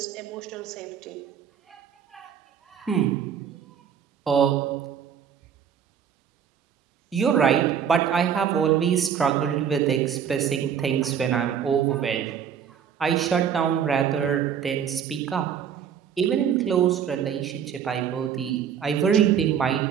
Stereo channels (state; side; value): quieter; left; 8.2 dB